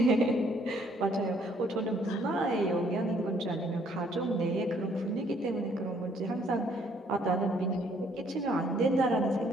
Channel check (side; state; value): both; normal; correlation 0.65